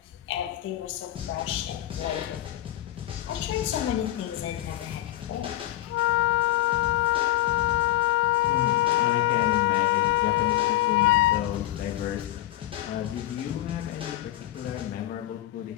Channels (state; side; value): quieter; right; 15.1 dB